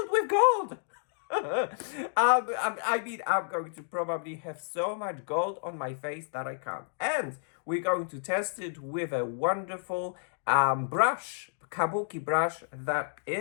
with gold. I mean, I'm going to probably have so much gold on my face that I can't. And we're going to test it with a wonderful brush, kabuki brush that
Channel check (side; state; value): right; silent; digital silence